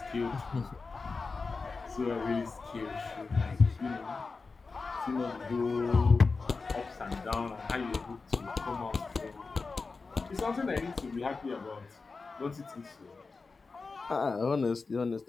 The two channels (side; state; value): right; quieter; 4.3 dB